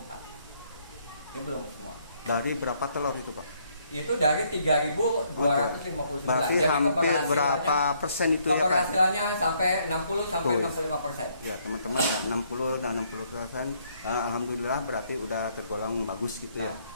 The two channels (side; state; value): both; inverted; correlation -0.69